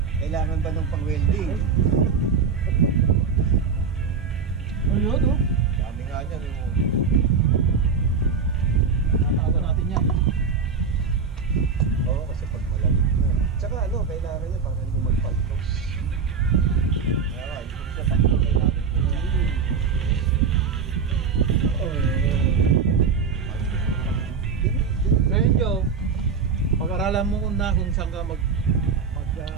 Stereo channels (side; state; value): left; quieter; 5.5 dB